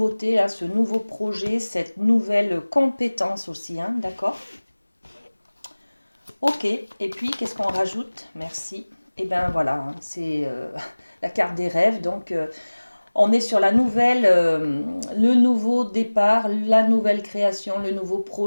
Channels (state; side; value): inverted; both; correlation -1.00